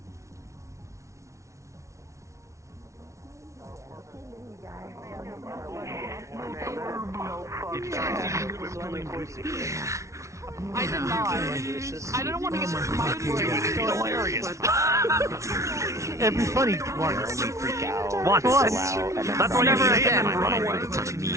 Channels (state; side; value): late; left; 0.14 ms